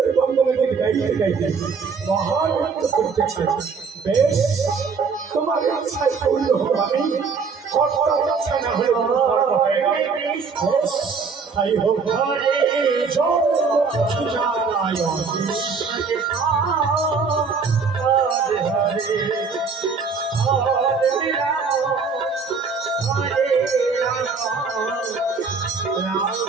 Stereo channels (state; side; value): quieter; left; 5.1 dB